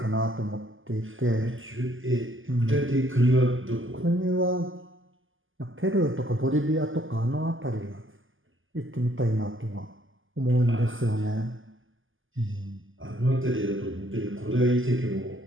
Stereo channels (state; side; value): late; left; 0.58 ms